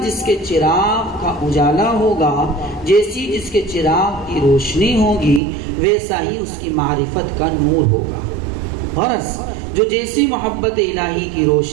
جس کے چراغ کا اجالا ہوگا، جیسی جس کے چراغ کی روشنی ہوگی، ویسا ہی اس کی معرفت کا نور ہوگا۔ غرض جو جیسی محبت الہی کی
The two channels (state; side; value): drops out; left; at 5.4 s